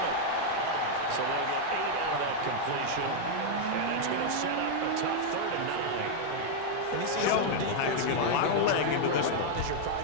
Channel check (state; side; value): different; both; correlation 0.00